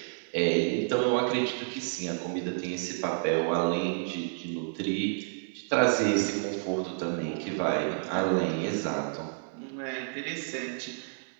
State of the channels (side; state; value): left; silent; 57 dB below the other